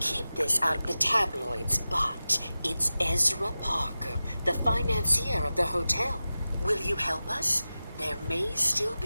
this out of the tabloids, but it's Ezra Parker, the financier of the hotel. Will you help us? There may still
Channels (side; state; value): both; inverted; correlation -0.95